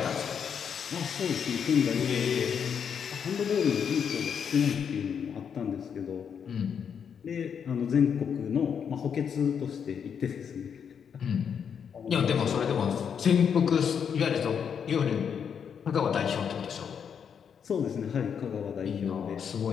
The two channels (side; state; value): right; quieter; 7.4 dB